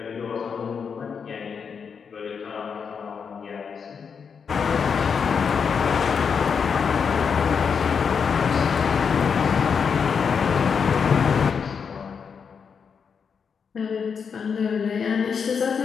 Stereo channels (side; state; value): right; quieter; 6.3 dB